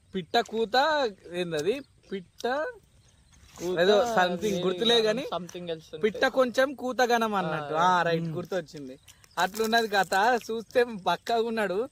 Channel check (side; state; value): both; identical; correlation 1.00